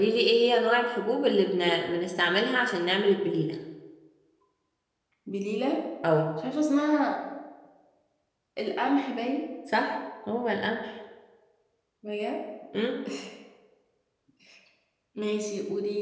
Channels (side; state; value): both; identical; correlation 1.00